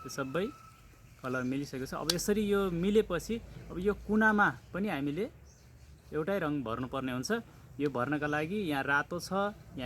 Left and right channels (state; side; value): identical; both; correlation 1.00